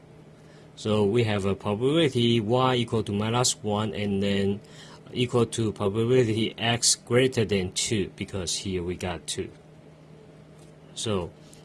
So we have a probability y equal to minus 1, and then equal to probability x greater than 2, because here we got 2. So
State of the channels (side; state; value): both; identical; correlation 1.00